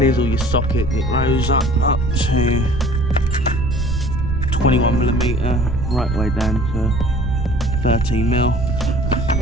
all your socket. It goes up to 21mm, right way down to 13mm.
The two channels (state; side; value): noise; right; rumble, 2 dB below the sound